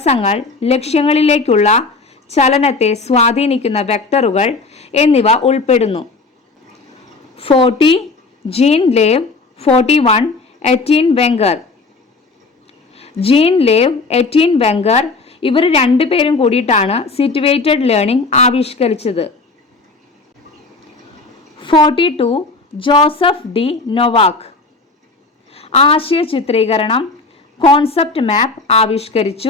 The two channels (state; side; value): quieter; right; 3.9 dB